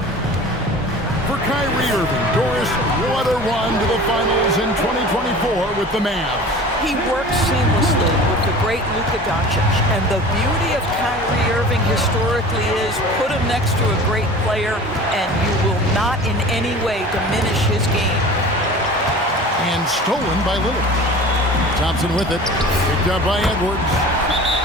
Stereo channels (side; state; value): both; normal; correlation 0.40